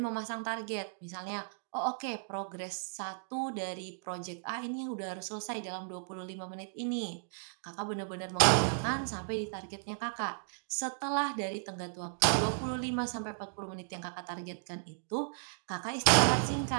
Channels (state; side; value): silent; left; digital silence